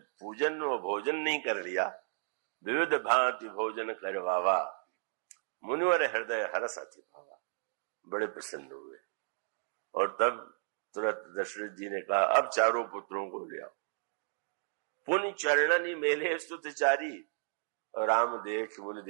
पूजन व भोजन नहीं कर लिया, विविध भांति भोजन करवावा, मुनिवर हृदय हरस अति भावा, बड़े प्रसन्न हुए। और तब तुरंत दशरथ जी ने कहा अब चारों पुत्रों को ले आओ। पुण्य चरणनी मेले स्तुतचारी, और राम देख मुनि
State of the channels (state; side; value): silent; left; digital silence